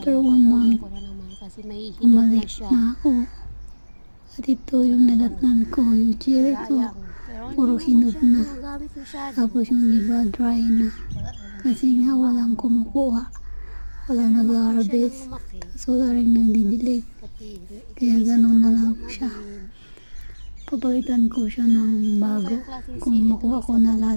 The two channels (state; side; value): inverted; both; correlation -1.00